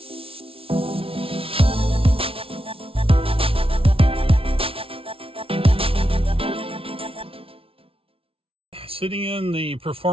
Sitting in the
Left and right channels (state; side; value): late; left; 0.26 ms